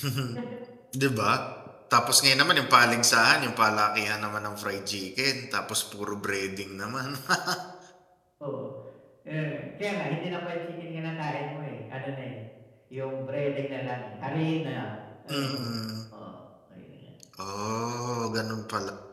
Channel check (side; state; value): both; identical; correlation 1.00